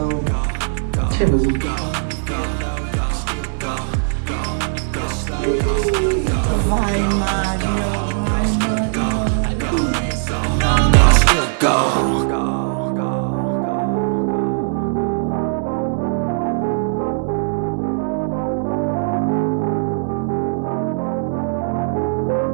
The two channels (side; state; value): left; silent; digital silence